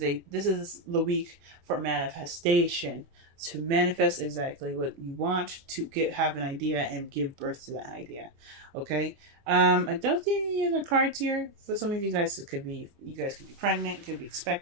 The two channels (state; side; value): late; left; 29 ms